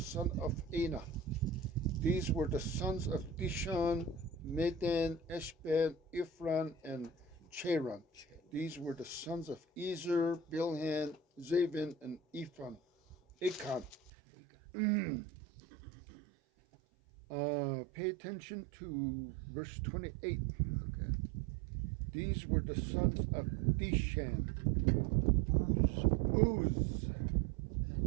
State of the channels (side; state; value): left; drops out; at 14.0 s